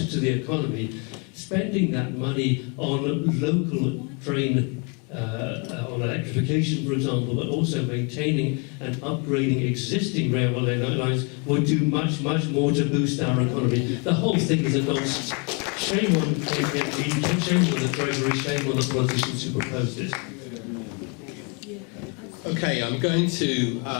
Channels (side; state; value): right; quieter; 33.6 dB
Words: to the economy, spending that money on local train, on electrification, for example, but also maintaining and upgrading existing railway lines would do much, much more to boost our economy. The whole thing is a nonsense. Shame on KPMG, shame on the Treasury, shame on the politicians who proposed it. Okay, I'm going to